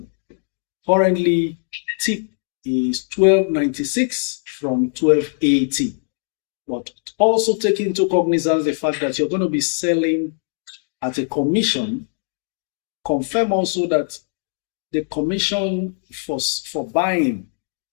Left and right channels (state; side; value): silent; right; 65 dB below the other